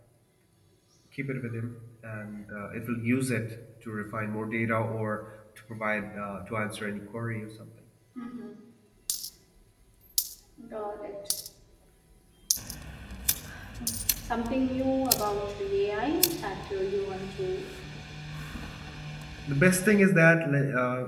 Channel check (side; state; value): both; identical; correlation 1.00